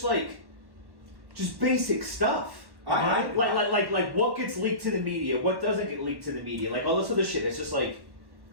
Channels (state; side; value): late; left; 1.1 ms